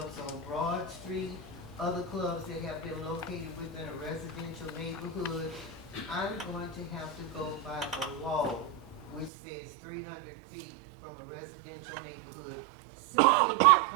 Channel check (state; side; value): drops out; left; at 9.3 s